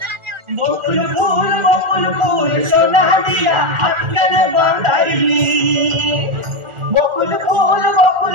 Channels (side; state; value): left; late; 1.4 ms